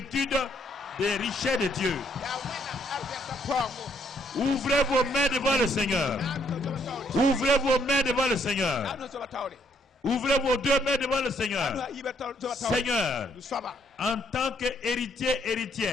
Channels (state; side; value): normal; both; correlation 0.70